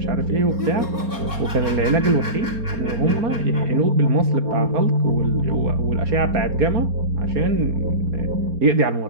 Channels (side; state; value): left; late; 4.3 ms